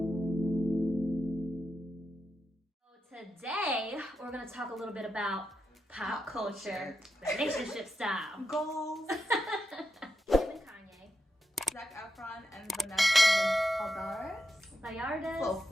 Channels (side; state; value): both; normal; correlation 0.87